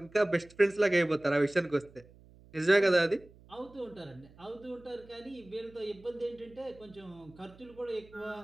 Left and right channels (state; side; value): noise; right; hum, 24 dB below the sound